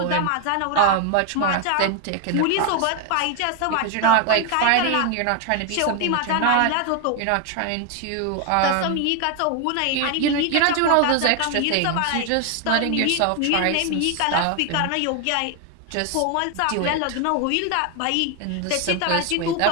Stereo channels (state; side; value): different; both; correlation 0.01